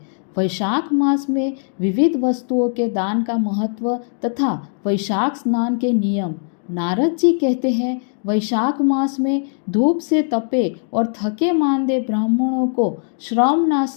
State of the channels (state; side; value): silent; right; digital silence